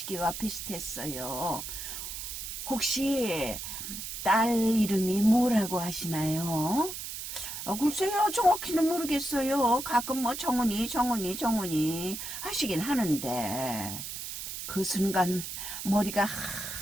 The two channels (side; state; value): right; noise; hiss, 7 dB below the sound